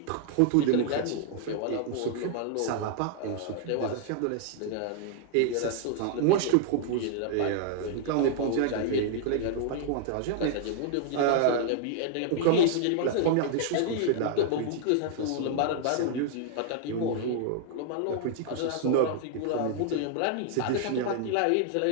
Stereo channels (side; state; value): both; different; correlation -0.01